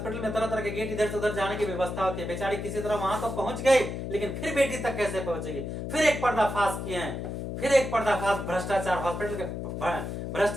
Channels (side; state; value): left; noise; hum, 5 dB below the sound